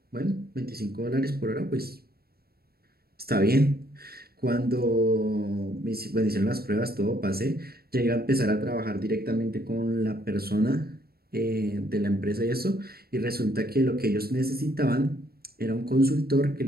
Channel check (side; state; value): left; late; 0.45 ms